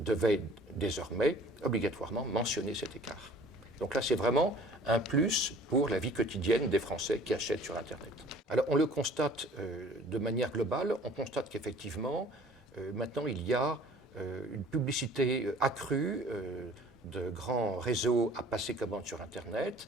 désormais obligatoirement mentionner cet écart. Donc là, c'est vraiment un plus pour la vie quotidienne des Français qui achètent sur Internet. Alors, on le constate de manière globale. On constate qu'effectivement, maintenant, il y a une publicité accrue de grands réseaux à passer commande sur Internet.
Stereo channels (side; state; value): both; normal; correlation 0.50